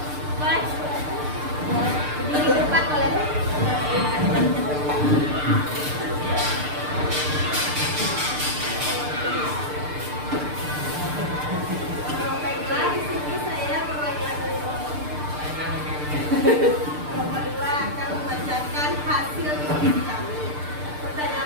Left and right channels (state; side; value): late; left; 6.7 ms